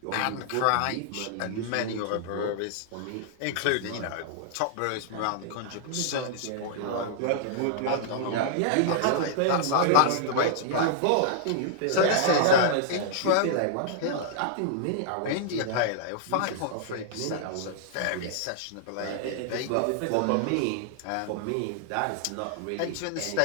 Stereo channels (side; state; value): both; different; correlation -0.01